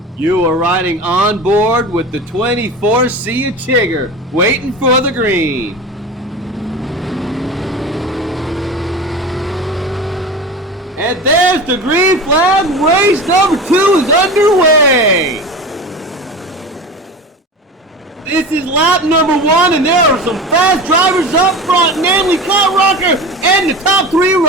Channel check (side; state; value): both; normal; correlation 0.31